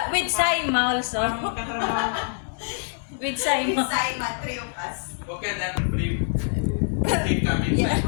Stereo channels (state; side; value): silent; right; 60 dB below the other